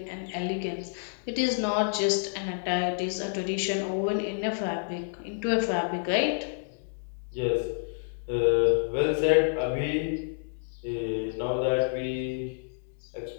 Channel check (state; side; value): silent; right; digital silence